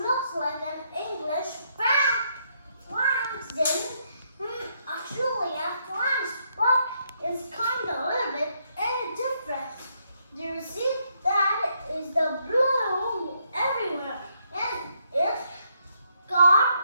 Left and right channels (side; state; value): both; inverted; correlation -0.75